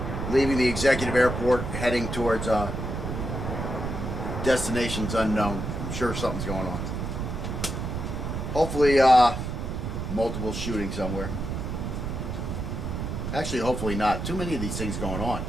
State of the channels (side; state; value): right; noise; rumble, 4 dB below the sound